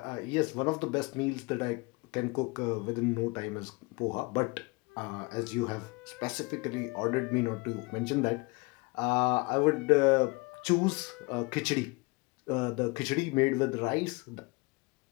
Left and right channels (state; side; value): quieter; right; 26.6 dB